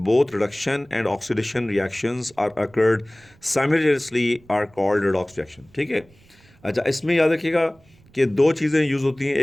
both reduction and oxidation reactions are occurred simultaneously are called redox reaction. ठीक है. अच्छा, इसमें याद रखिएगा कि दो चीज़ें यूज़ होती हैं,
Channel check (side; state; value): right; noise; rumble, 29 dB below the sound